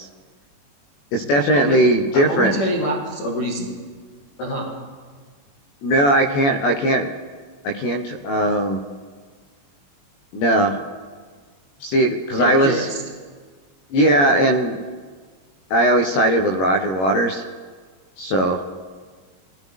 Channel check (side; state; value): right; late; 21 ms